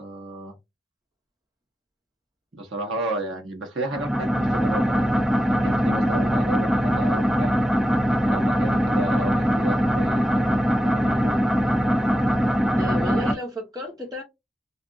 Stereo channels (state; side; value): normal; both; correlation 0.90